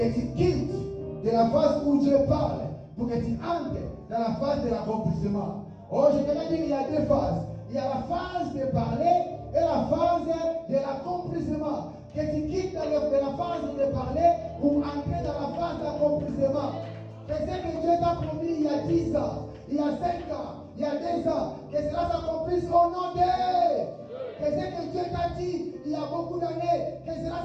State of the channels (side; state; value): both; identical; correlation 1.00